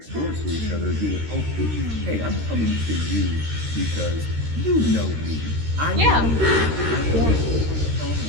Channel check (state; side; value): late; left; 13 ms